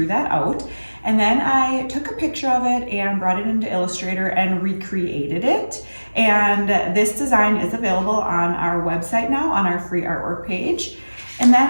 that out. And then I took a picture of it and brought it into Illustrator and recreated it. And this design is available on our website now, on our free artwork page. And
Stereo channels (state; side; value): inverted; both; correlation -1.00